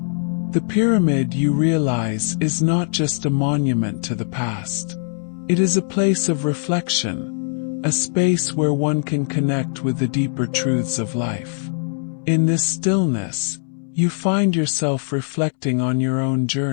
The pyramid, you realize, is not just a monument to the past. It is a place of reflection, a space where one can connect with the deeper truths of life. In this stillness, you find yourself reflecting on your own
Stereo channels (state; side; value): silent; right; 65 dB below the other